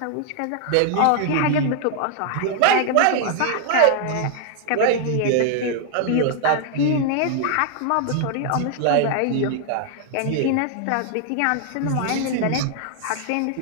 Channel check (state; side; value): different; both; correlation 0.00